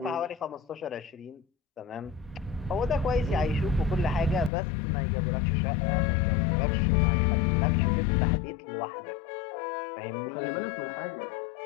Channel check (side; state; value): right; drops out; at 4.5 s